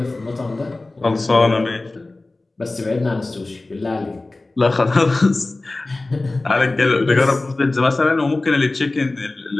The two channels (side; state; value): right; quieter; 3.1 dB